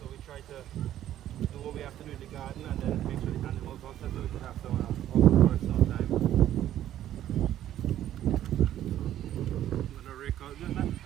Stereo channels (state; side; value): quieter; left; 12.1 dB